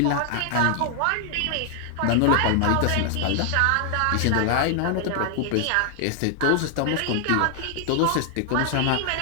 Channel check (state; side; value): different; both; correlation 0.00